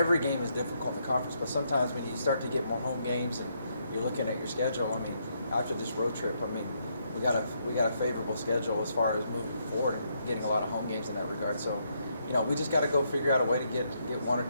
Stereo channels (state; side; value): inverted; both; correlation -0.76